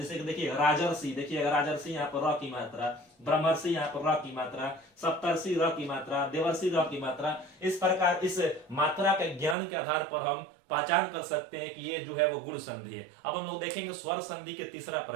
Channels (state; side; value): drops out; left; at 9.6 s